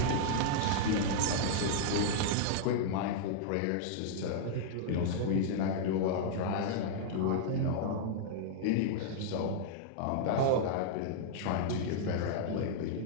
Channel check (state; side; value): different; both; correlation -0.01